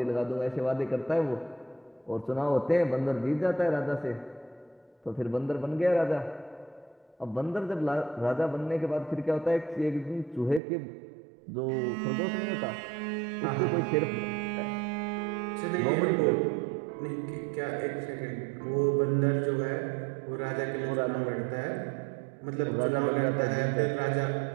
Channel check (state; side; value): drops out; left; at 10.6 s